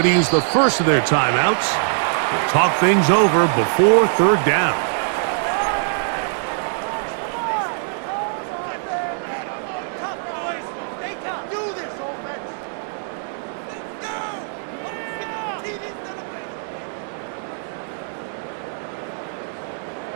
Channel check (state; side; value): silent; left; 64 dB below the other